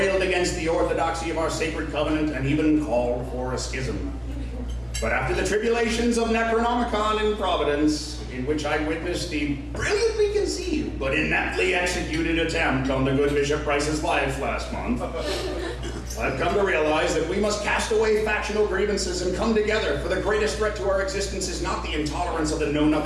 against the orthodoxy of our sacred covenant and even called for a schism. But after the tribulations of Necronomicon in Providence, in which I witnessed the brilliantly conceived but ineptly executed attempt on the good Bishop Price's life last month, I've come to realize that we must cast away factional grievances and come together, for the greatest threat to our existence is not the intolerance of the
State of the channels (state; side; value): identical; both; correlation 1.00